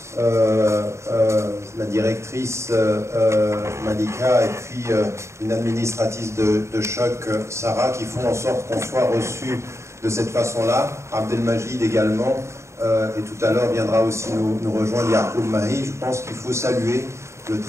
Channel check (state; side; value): late; left; 0.14 ms